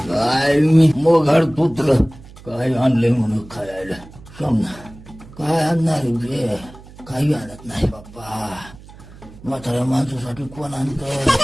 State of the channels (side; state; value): right; noise; hum, 20 dB below the sound